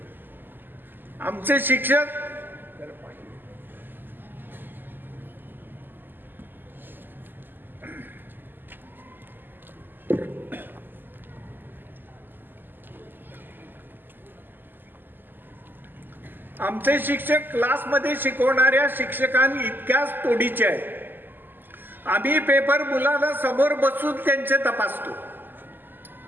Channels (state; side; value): late; left; 0.092 ms